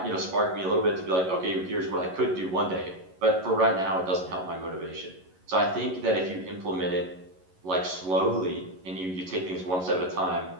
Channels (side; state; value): left; late; 11 ms